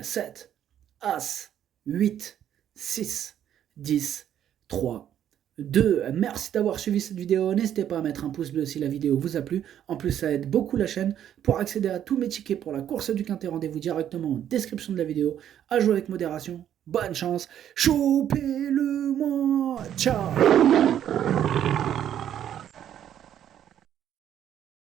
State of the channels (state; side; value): quieter; left; 10.3 dB